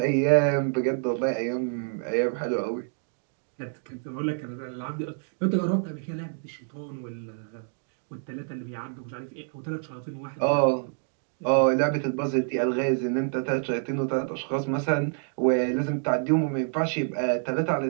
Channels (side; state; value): left; silent; 60 dB below the other